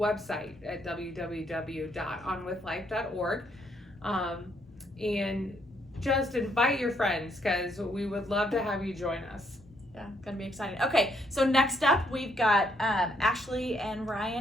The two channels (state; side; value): normal; both; correlation 0.72